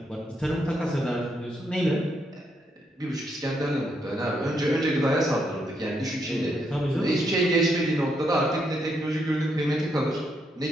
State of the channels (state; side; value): normal; both; correlation 0.77